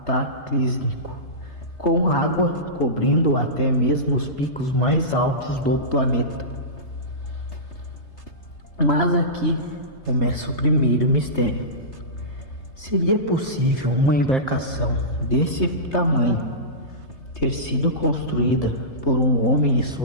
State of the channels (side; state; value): right; late; 3.3 ms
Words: com água cobrindo até mesmo os picos mais altos do planeta. Mas aqui começa o primeiro mistério. Seria possível uma embarcação desse tamanho ter sido construída por um homem e